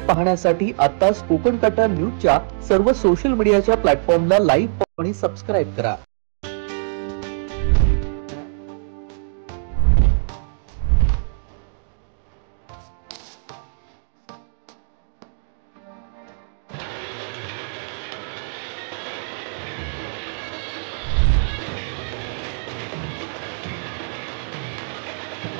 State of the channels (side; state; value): left; silent; digital silence